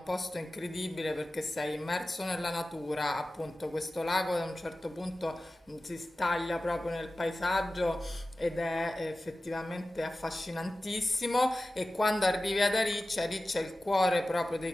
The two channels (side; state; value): both; normal; correlation 0.95